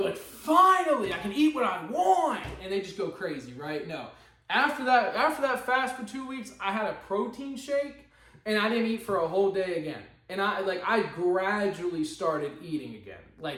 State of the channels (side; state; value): both; identical; correlation 1.00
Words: like, finally I can eat what I want, and they just go crazy, right? No. After that fast for 2 weeks, I had a protein shake and I didn't eat for a whole day again. And I gradually started eating again,